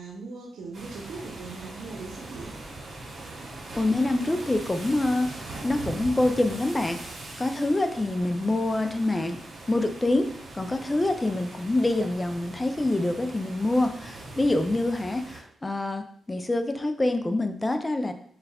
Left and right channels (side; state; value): both; normal; correlation 0.95